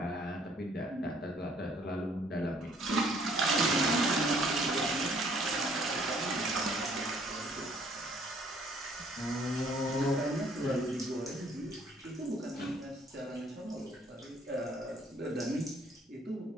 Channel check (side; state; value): both; normal; correlation 0.61